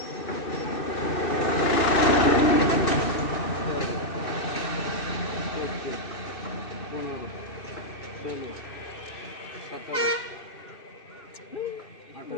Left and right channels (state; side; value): late; right; 2.6 ms